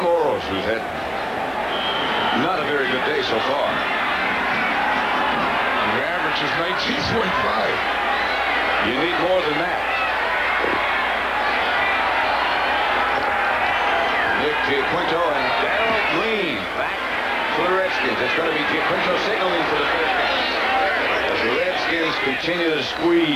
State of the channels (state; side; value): identical; both; correlation 1.00